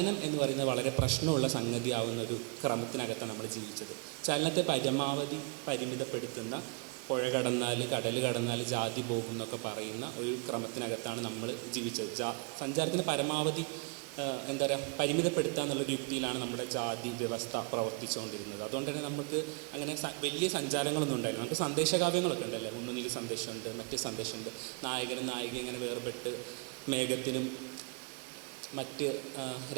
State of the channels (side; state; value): left; quieter; 32.6 dB